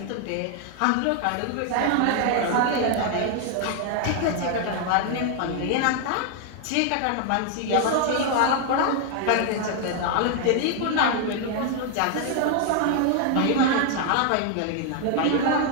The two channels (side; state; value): both; different; correlation 0.00